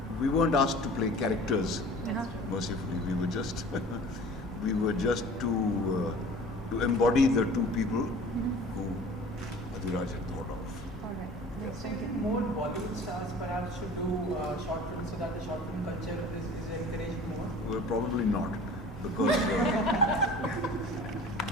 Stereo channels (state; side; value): normal; both; correlation 0.43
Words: we weren't asked to play characters. Mercifully, we were just to embody the two people who Adhiraj had thought of. All right. Yes, So thank you. more Bollywood stars perhaps should do short films so that the short film culture is encouraged more? Well, probably not, because